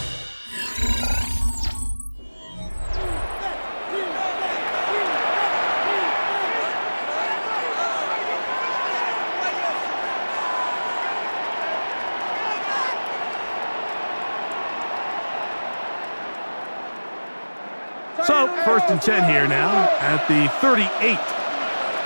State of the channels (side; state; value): both; inverted; correlation -1.00